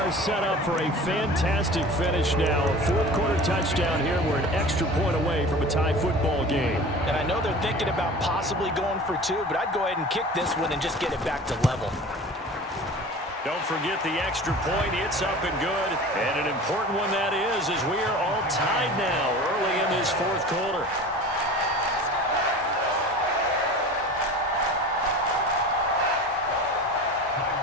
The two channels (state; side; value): normal; both; correlation 0.38